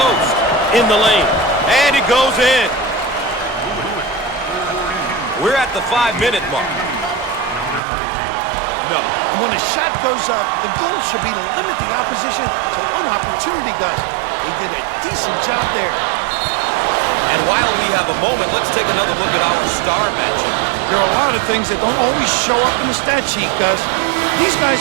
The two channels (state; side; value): drops out; left; at 7.8 s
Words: in the lane, and it goes in. We're at the 5-minute mark. No. And when a shot goes up, the goal should be to limit the opposition to one opportunity, Gus. They did a decent job there. And while we have a moment, let's take another look at our star matchup. There are a lot of things that don't always show up in the stat sheet, Gus. These